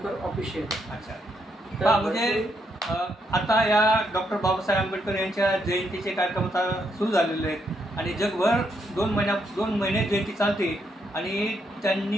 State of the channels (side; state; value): both; normal; correlation 0.77